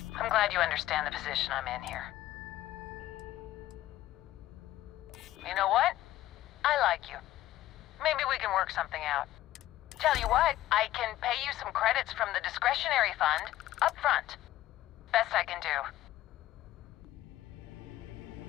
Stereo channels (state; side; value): quieter; right; 14.5 dB